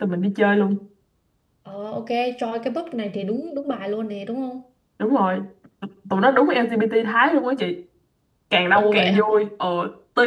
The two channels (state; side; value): identical; both; correlation 1.00